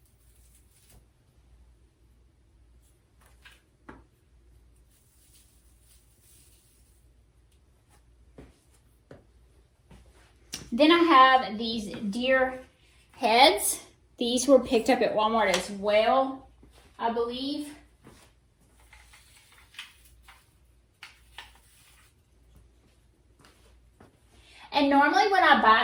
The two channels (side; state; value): both; identical; correlation 1.00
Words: Then I have these deer heads. These were picked up at Walmart as well, I believe. And normally when I